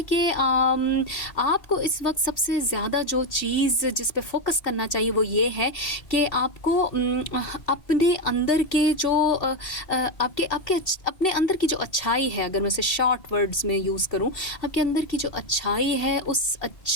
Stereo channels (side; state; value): right; late; 2.7 ms